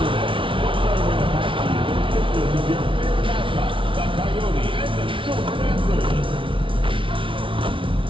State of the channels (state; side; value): late; left; 0.25 ms